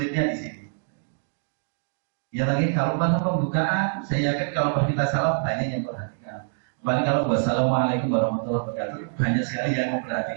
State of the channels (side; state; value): left; silent; digital silence